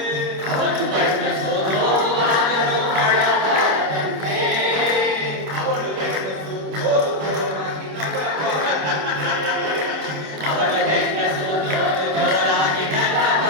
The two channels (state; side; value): late; left; 26 ms